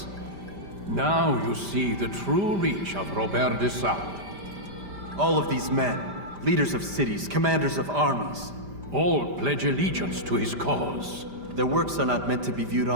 Now you see the true reach of Robert de Sade. All of these men, leaders of cities, commanders of armies. All pledge allegiance to his cause. Their works are not meant to be viewed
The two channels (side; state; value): left; late; 5.0 ms